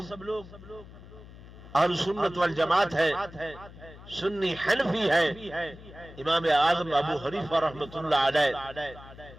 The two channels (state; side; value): noise; left; hum, 18 dB below the sound